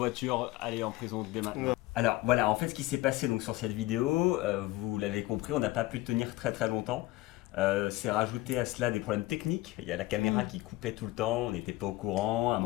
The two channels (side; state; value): right; quieter; 18.6 dB